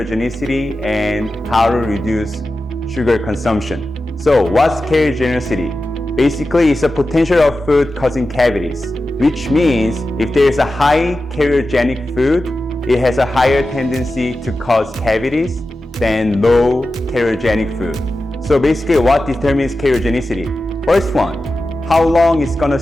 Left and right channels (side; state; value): both; normal; correlation 0.93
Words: and how to reduce sugar consumption. So what's cariogenicity? Basically, it's a potential of food causing cavities, which means if there is a high cariogenic food, it has a higher tendency to cause cavities than low cariogenic food. So basically, what determines cariogenicity? First one, how long it's gonna